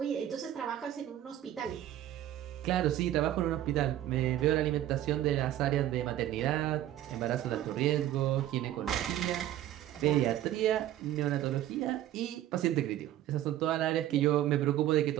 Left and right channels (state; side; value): quieter; left; 12.8 dB